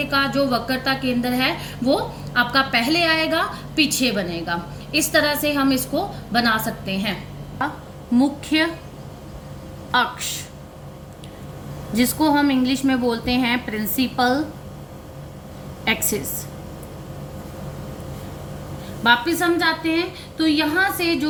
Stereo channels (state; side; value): identical; both; correlation 1.00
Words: का जो वक्रता केंद्र है वो आपका पहले आएगा, पीछे बनेगा। इस तरह से हम इसको बना सकते हैं। मुख्य अक्ष, जिसको हम इंग्लिश में बोलते हैं प्रिंसिपल एक्सिस। वापिस हम जाते हैं तो यहाँ से